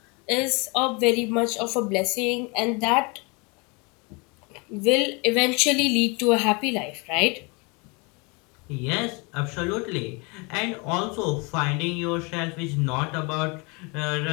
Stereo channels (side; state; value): right; quieter; 29.8 dB